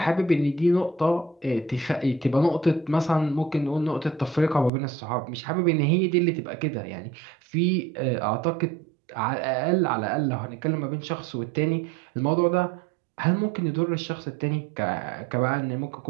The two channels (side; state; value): left; drops out; at 4.7 s